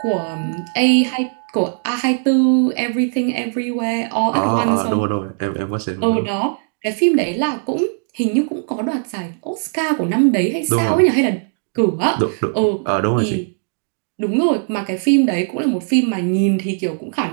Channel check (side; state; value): left; silent; digital silence